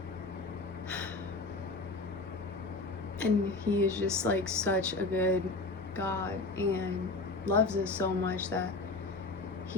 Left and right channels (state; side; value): quieter; right; 3.3 dB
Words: And he is just like such a good God, and loves us so much that